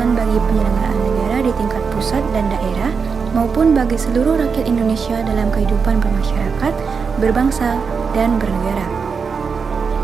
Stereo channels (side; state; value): left; quieter; 5.5 dB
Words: bagi penyelenggaraan negara di tingkat pusat dan daerah, maupun bagi seluruh rakyat Indonesia dalam kehidupan bermasyarakat, berbangsa, dan bernegara.